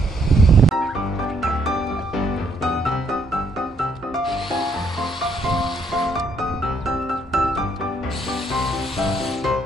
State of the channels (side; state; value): both; normal; correlation 0.71